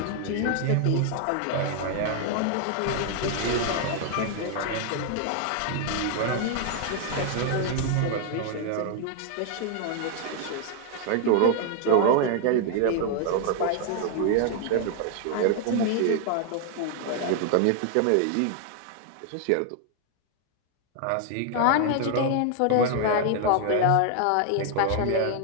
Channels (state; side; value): different; both; correlation 0.00